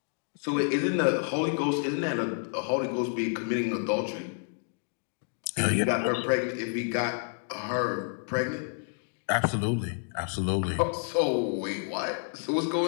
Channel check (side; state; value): right; silent; 58 dB below the other